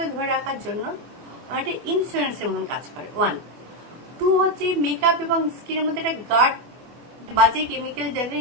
ধরে রাখার জন্য একটা ইন্স্যুরেন্সের মতন কাজ করে। 1 2 হচ্ছে মেকআপ এবং স্কিনের মধ্যে একটা গার্ড, বাজে কেমিক্যাল যাতে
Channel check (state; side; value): late; left; 24 ms